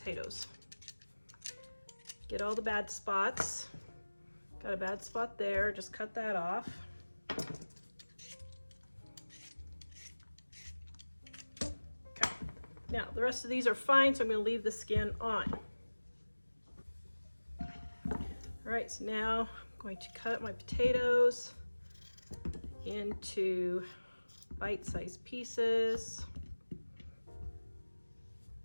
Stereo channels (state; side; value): inverted; both; correlation -1.00